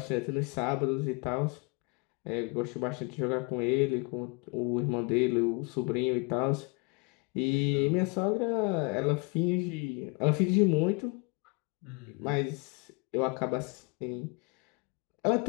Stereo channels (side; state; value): right; quieter; 31.6 dB